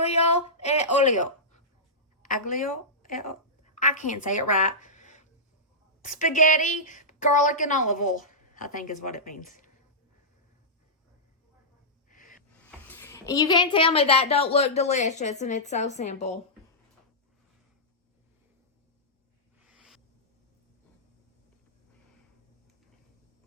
e olio. Aglio e olio. I can't say it right. Spaghetti, garlic, and olive oil, I think is what it means. And you can't tell me that don't look delicious, and it's so simple.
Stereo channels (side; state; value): both; normal; correlation -0.14